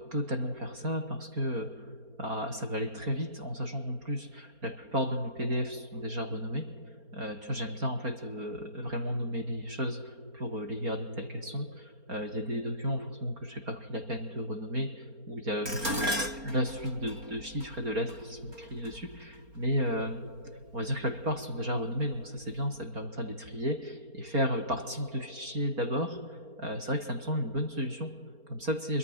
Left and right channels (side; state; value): left; late; 4.3 ms